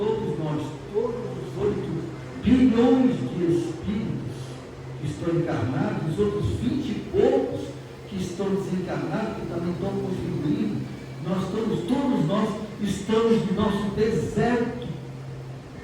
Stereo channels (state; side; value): identical; both; correlation 1.00